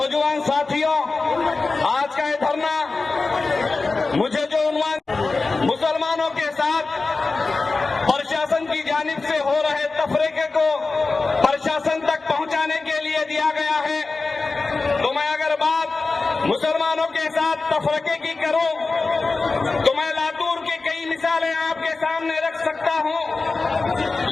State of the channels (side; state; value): right; quieter; 3.8 dB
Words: साथियों, आज का ये धरना मुझे जो उन्वान मुसलमानों के साथ प्रशासन की जानिब से हो रहे तफरीके को प्रशासन तक पहुंचाने के लिए दिया गया है, तो मैं अगर बात मुसलमानों के साथ तफरीके की करूं तो मैं लातूर की कई मिसालें आपके सामने रख सकता हूं।